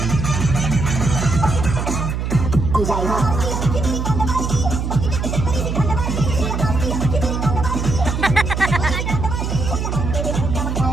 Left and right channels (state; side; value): noise; right; hum, 2 dB below the sound